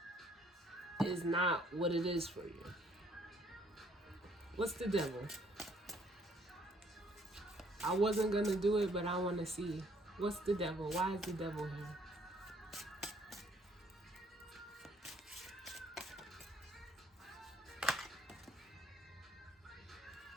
is not what it is for you. What's the devil? I wasn't going to do it, but I want to see. What's the devil? Why is the devil here?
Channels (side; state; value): both; normal; correlation 0.64